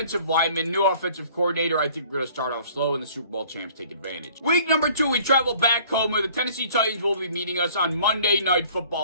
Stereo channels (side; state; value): both; inverted; correlation -0.53